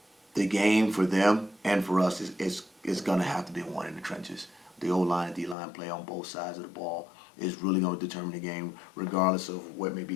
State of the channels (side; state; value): right; drops out; at 5.6 s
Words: the game for them and for us is going to have to be won in the trenches. The O-line and D-line play on both sides of the ball is really going to determine the game, regardless of what may be